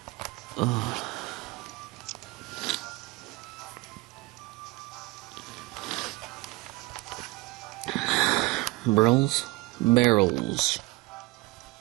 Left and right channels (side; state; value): left; quieter; 22.5 dB